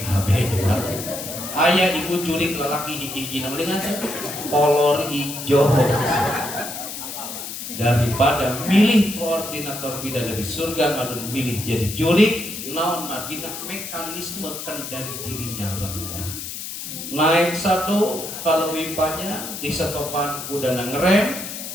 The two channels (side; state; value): left; noise; hiss, 8 dB below the sound